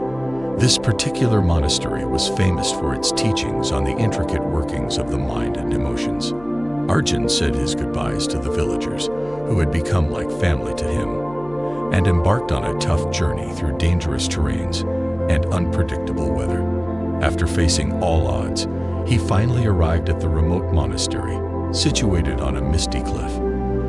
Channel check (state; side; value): noise; left; hum, 20 dB below the sound